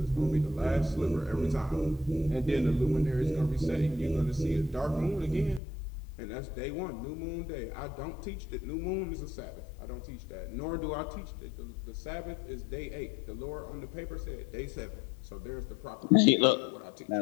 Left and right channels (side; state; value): right; drops out; at 5.6 s